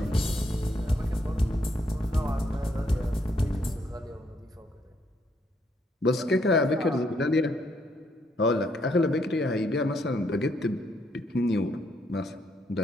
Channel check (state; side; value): normal; both; correlation 0.73